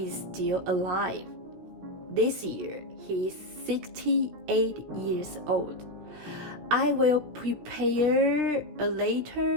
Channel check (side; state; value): left; late; 17 ms